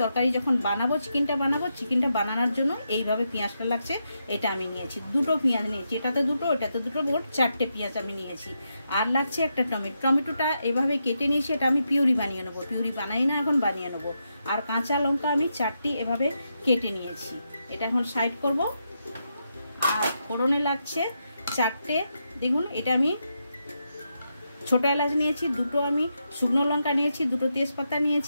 তরকারি যখন বানাবো, চিকেনটা বানানোর জন্য এইভাবে পেঁয়াজটা লাগছে, এটা আমি নিয়েছি। 2টো পেঁয়াজ নিয়েছি, এটাতে 2টো, এটাতে 2টো, মোট 4টে পেঁয়াজ আমি নিয়েছি। আর লাগছে একটা টমেটোটা এভাবে কেটে নিয়েছি, এটা আমি পিউরি বানিয়ে নেবো। পিউরি বানাই না, এখন বানিয়ে নেবো। আর কাঁচা লঙ্কা আমি 4টি এভাবে কেটে নিয়েছি। এটা এখন সাইড করব। আর ফোড়নে লাগছে 4টে, দেখুন এটা আমি ছোট এলাচ নিয়েছি, 2টো আমি শুকনো লঙ্কা নিয়েছি, 2টো তেজপাতা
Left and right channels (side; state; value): both; inverted; correlation -0.84